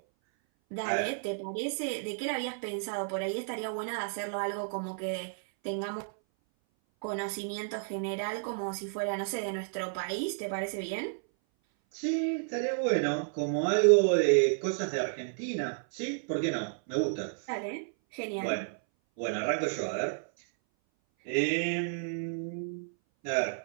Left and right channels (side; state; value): left; silent; 57 dB below the other